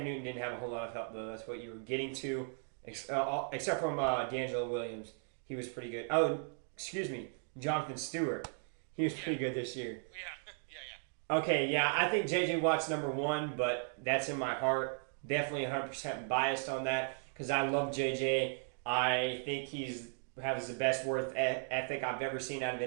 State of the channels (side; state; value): left; silent; 53 dB below the other